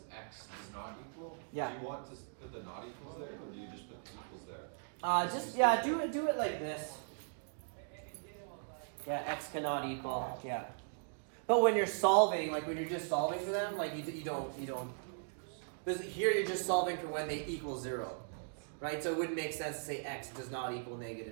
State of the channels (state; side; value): silent; left; digital silence